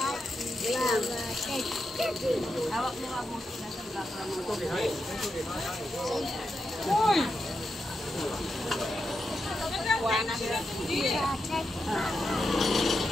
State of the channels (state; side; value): normal; both; correlation 0.86